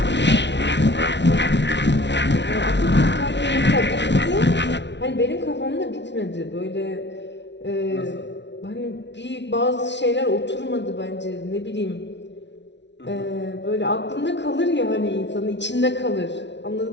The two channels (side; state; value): right; late; 0.51 ms